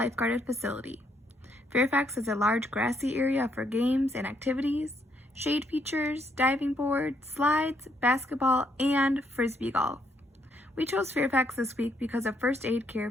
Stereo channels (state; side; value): normal; both; correlation 0.73